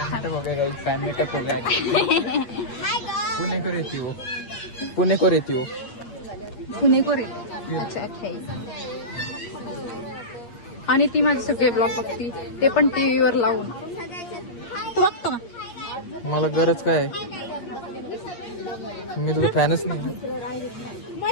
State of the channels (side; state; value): right; late; 8.5 ms